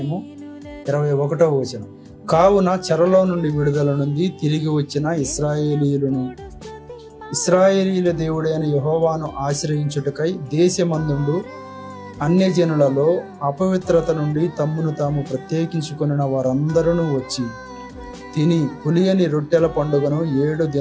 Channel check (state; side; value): identical; both; correlation 1.00